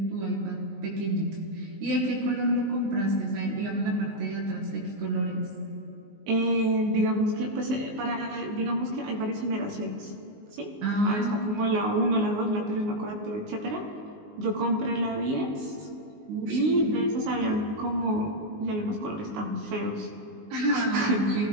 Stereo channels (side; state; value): left; late; 19 ms